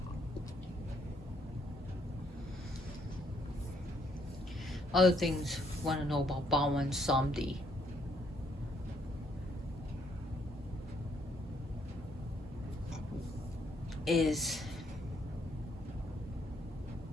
Other things want to know about Bawan Samedi. Is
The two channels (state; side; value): normal; both; correlation 0.70